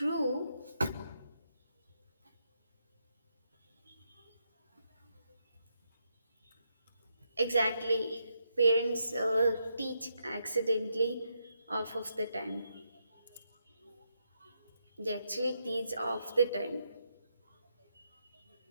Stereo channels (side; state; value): both; inverted; correlation -0.81